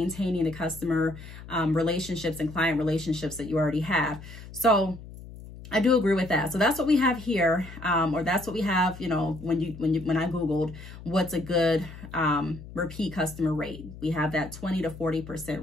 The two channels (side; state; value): left; noise; hum, 15 dB below the sound